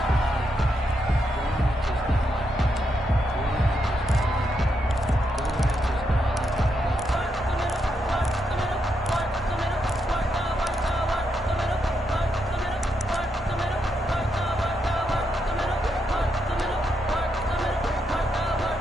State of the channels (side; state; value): both; normal; correlation 0.81